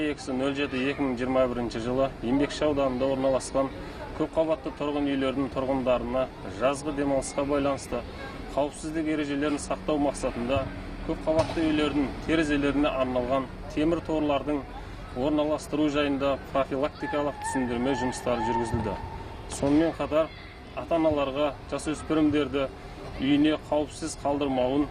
жылы Еңбекші ауданында орналасқан көпқабатты тұрғын үйлердің тұрғындарына жазғы демалысқа байланысты қауіпсіздік ережелерін сақтау мақсатында көпқабатты үйлердің терезелеріне арналған темір торлардың орналастыру жайында профилактикалық түсіндірме жұмыстары жүргізілді. Сонымен қатар ата-аналарға жасөспірімдерді үйіне қауіпсіз қалдырмауын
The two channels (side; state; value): both; identical; correlation 1.00